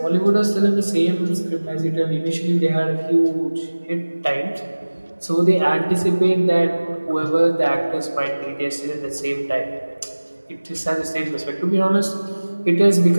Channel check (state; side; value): inverted; both; correlation -1.00